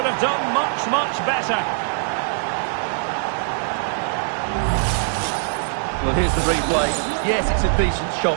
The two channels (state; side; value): silent; left; 64 dB below the other